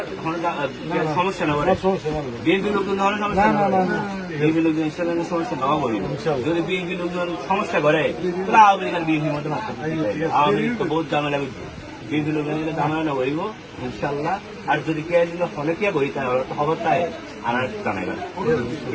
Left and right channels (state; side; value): identical; both; correlation 1.00